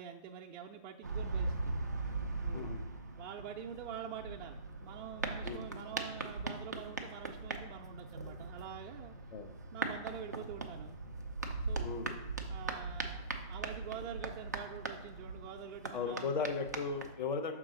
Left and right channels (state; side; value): inverted; both; correlation -0.34